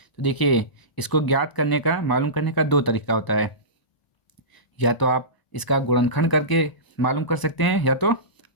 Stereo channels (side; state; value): right; late; 1.0 ms